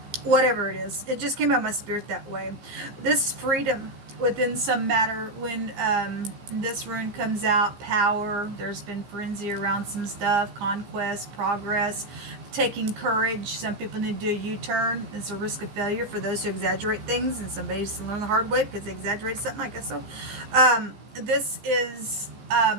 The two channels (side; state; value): left; late; 15 ms